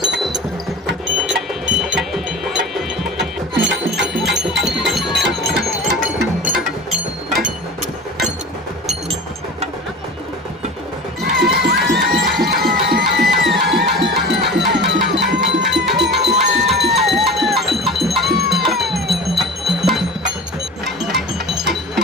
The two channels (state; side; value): normal; both; correlation 0.35